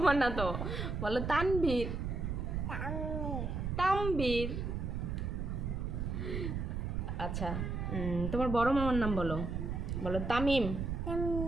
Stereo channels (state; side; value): noise; right; rumble, 2 dB below the sound